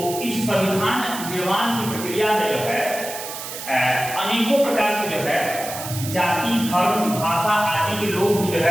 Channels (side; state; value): right; noise; hiss, 9 dB below the sound